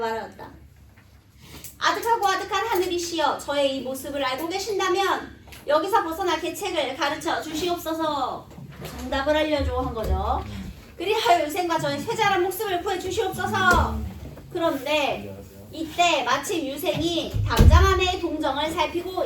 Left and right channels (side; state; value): both; identical; correlation 1.00